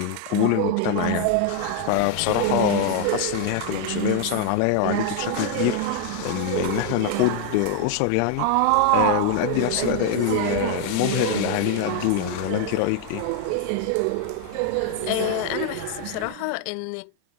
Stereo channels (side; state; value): both; different; correlation 0.00